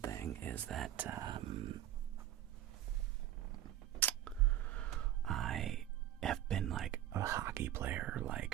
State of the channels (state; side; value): quieter; left; 12.4 dB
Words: thing is that I have been like a hockey player.